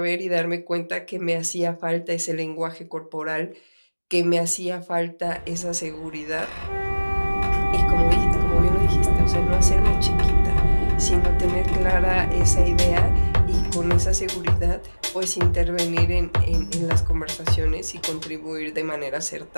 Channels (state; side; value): inverted; both; correlation -1.00